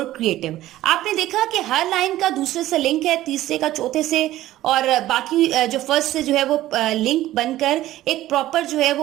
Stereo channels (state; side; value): quieter; left; 14.9 dB